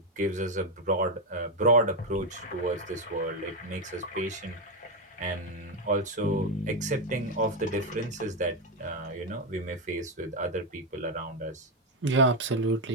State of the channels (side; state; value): both; normal; correlation 0.06